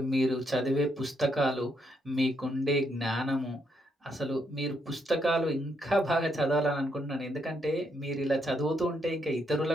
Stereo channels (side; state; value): both; normal; correlation 0.76